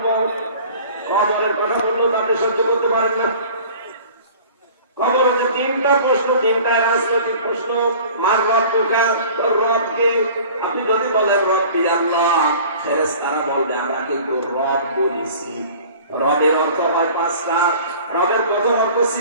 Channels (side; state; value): both; inverted; correlation -0.45